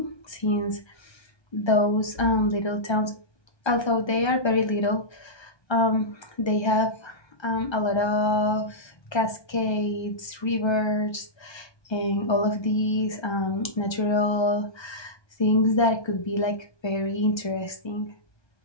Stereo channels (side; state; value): right; late; 1.3 ms